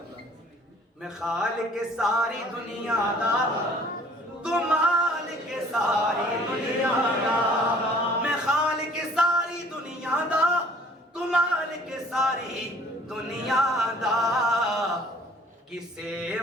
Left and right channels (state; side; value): normal; both; correlation 0.54